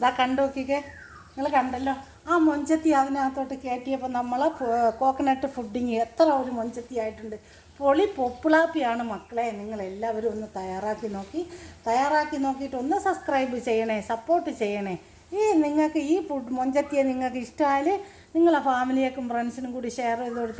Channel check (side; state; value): both; identical; correlation 1.00